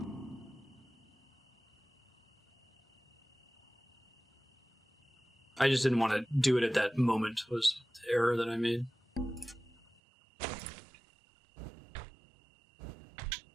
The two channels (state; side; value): drops out; left; at 10.0 s